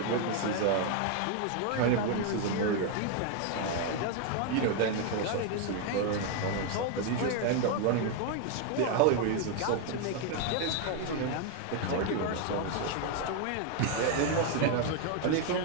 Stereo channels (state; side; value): different; both; correlation 0.01